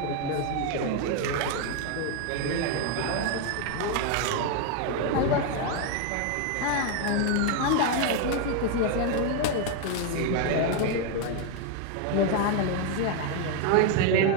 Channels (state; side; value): different; both; correlation 0.01